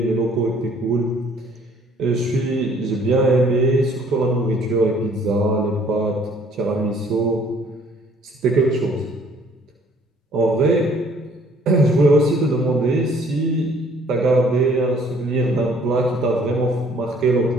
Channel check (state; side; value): normal; both; correlation 0.59